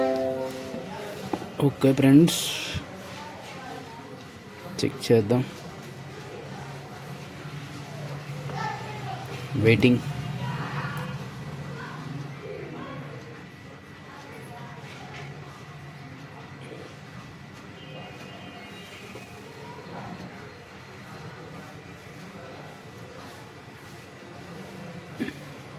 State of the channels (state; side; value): identical; both; correlation 1.00